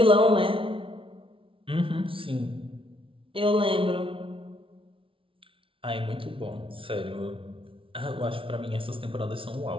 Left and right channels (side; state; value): left; late; 0.25 ms